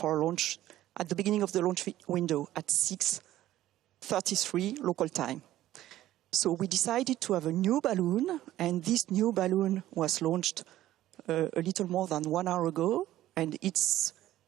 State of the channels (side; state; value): left; quieter; 14.1 dB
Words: launch at the beginning of the launch window at 6:33 local time. So we decided to have a new balloon, and this new balloon was launched a little more than 1 hour ago, and its